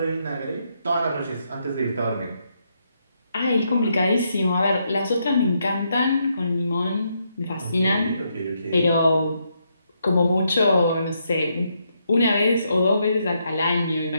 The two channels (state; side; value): inverted; both; correlation -0.78